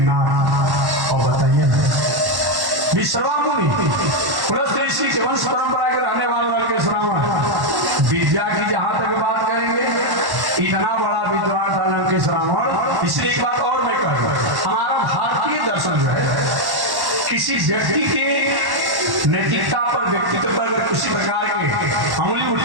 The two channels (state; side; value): late; left; 1.1 ms